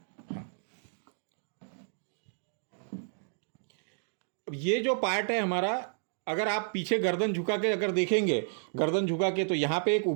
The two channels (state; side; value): silent; left; digital silence